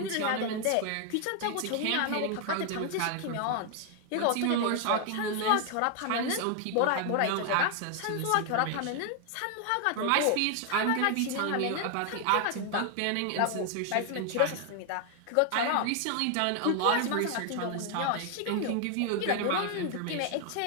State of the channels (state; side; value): different; both; correlation 0.00